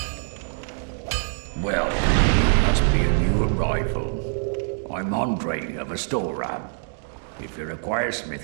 Well, must be a new arrival. I'm Andre of Astora. If you require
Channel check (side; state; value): left; silent; digital silence